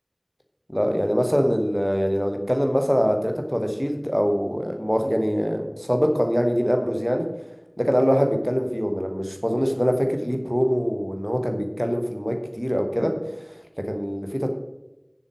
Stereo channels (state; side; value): identical; both; correlation 1.00